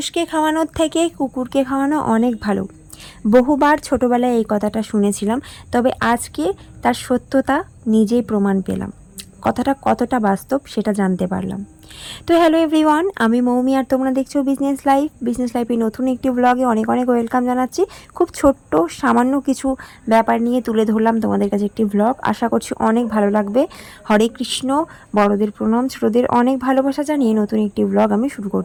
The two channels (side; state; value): both; identical; correlation 1.00